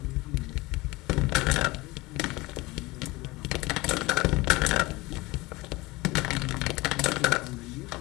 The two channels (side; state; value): right; quieter; 21.8 dB